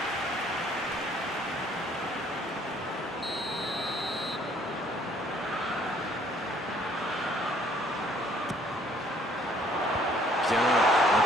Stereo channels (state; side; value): normal; both; correlation 0.61